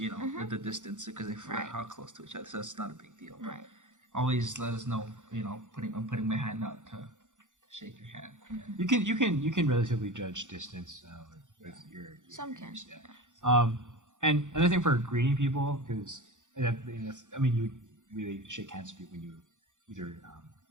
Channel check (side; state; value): left; late; 0.86 ms